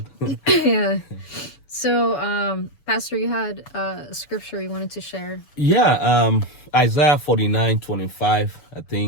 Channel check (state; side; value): late; right; 7.0 ms